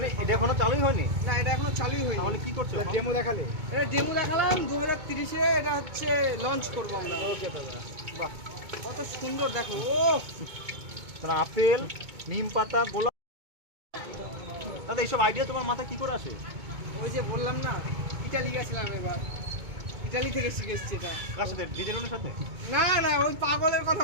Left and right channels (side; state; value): left; late; 2.2 ms